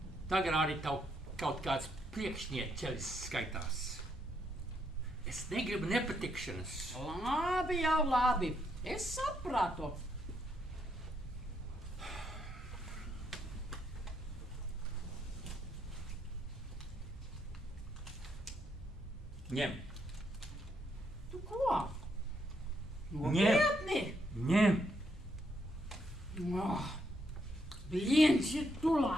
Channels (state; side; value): normal; both; correlation 0.76